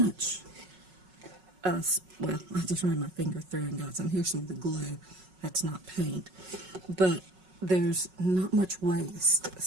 Well, I just ran my finger through and got some. Here's some of the glue. That's not paint. But there's not much waste.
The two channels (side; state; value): left; late; 5.4 ms